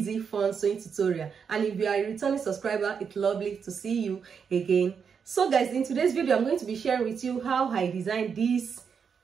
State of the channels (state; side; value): quieter; left; 6.5 dB